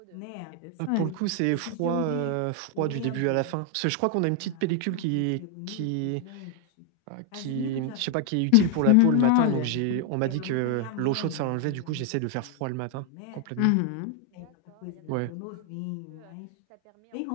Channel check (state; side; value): different; both; correlation 0.00